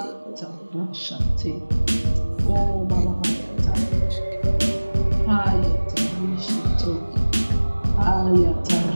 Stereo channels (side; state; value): both; inverted; correlation -1.00